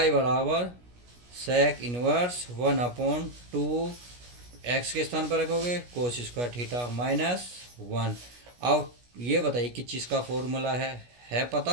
बराबर सेक इनवर्स 1/2 x के स्थान पर रखोगे कोस स्क्वायर थीटा माइनस 1। अब ये बताइए किस चीज़ का फॉर्मूला है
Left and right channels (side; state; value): left; late; 17 ms